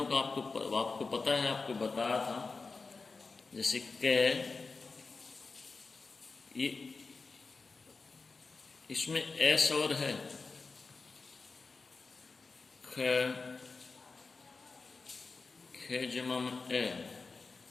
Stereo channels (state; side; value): quieter; right; 4.2 dB